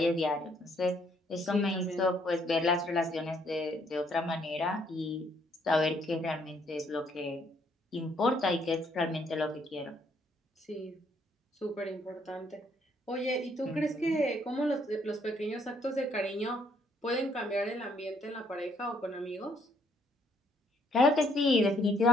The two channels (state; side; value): normal; both; correlation 0.68